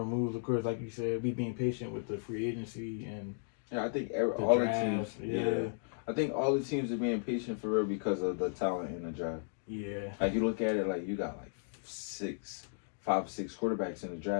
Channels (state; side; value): silent; right; digital silence